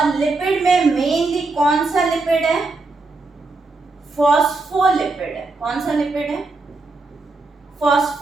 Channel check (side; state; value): left; quieter; 3.5 dB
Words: लिपिड में मेनली कौन सा लिपिड है? फॉस्फोलिपिड है। कौन सा लिपिड है?